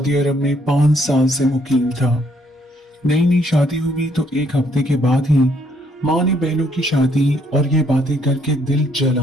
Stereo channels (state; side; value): normal; both; correlation 0.69